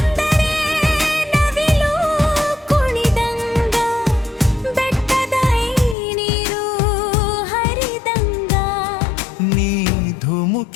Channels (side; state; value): right; drops out; at 6.0 s